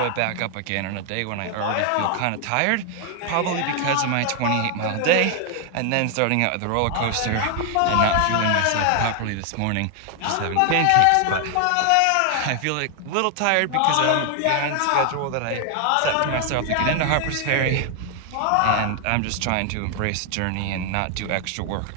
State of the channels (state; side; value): different; both; correlation 0.00